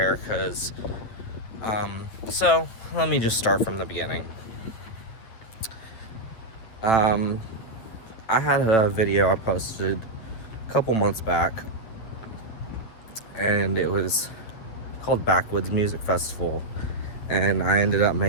because so let me just start from the beginning. I had a video I posted a couple months back, and it was called Backwoods Music Festival, and I ended up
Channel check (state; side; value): late; right; 8.8 ms